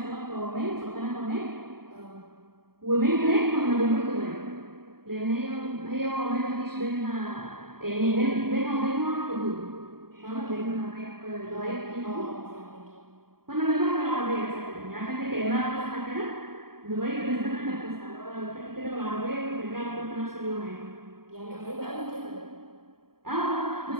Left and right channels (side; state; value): left; late; 0.94 ms